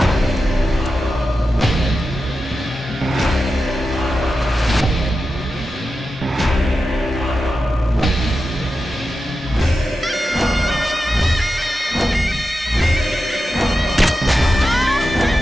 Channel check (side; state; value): both; normal; correlation 0.91